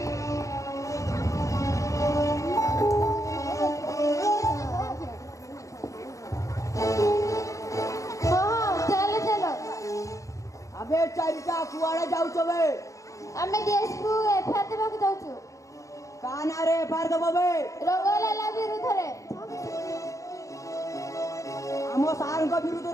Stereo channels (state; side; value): late; right; 0.15 ms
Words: ହଁ ଚାଲ ଚାଲ ଆବେ ଚାରିଟା କୁଆଡେ ଯାଉଛ ବେ ଆମେ ଡିଏସ୍ପି ଏଫଆଇଆର ଦେବାକୁ ଯାଉଛୁ କା ନାଁରେ ଏଫଆଇଆର ଦବ ବେ ରଙ୍ଗଲାଲା ବିରୁଦ୍ଧରେ ଆମ ସାର୍ଙ୍କ